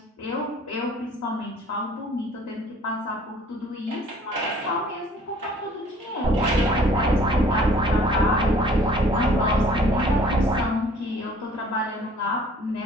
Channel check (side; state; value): both; normal; correlation 0.54